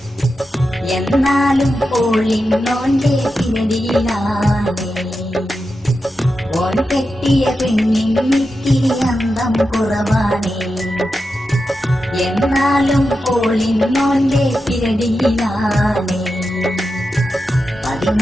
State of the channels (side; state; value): both; normal; correlation 0.89